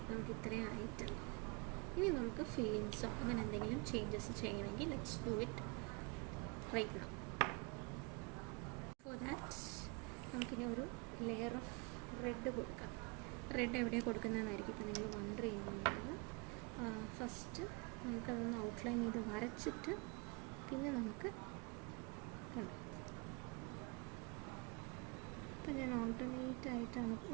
നമുക്ക് ഇത്രയും ആയിട്ടുണ്ട്. ഇനി നമുക്ക് ഫില്ലിങ്സോ അങ്ങനെ എന്തെങ്കിലും ചേഞ്ചസ് ചെയ്യണമെങ്കിൽ let's do it right now. For that നമുക്കിനി ഒരു ലെയർ ഓഫ് റെഡ് കൊടുക്കാം. റെഡ് എവിടെയാണ് കൊടുക്കുന്നതെന്നായിരിക്കും ഇപ്പം നിങ്ങൾ വണ്ടർ ചെയ്യുന്നത്. ഫസ്റ്റ് നമുക്കതൊന്ന് ഔട്ട്ലൈൻ ചെയ്ത് വരച്ചിട്ട് പിന്നെ നമുക്ക് കണ്ടു. ഇപ്പം ഞാൻ ഓൾട്ടർനേറ്റ് ആയിട്ടാണ്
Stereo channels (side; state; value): left; quieter; 29.8 dB